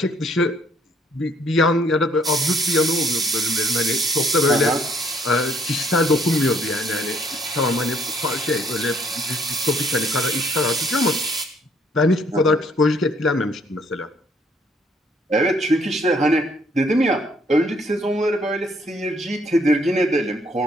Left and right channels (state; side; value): normal; both; correlation 0.65